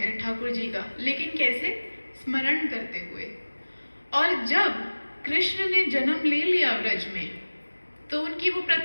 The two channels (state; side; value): inverted; both; correlation -1.00